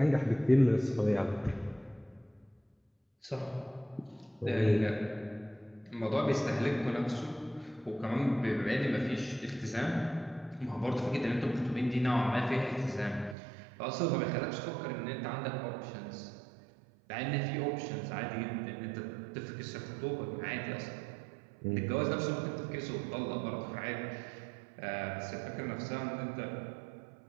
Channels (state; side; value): drops out; left; at 13.4 s